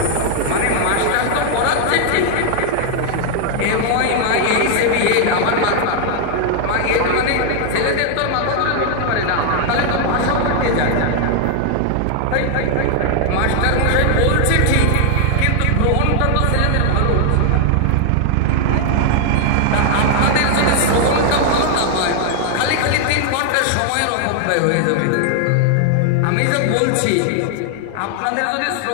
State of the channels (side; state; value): both; different; correlation 0.00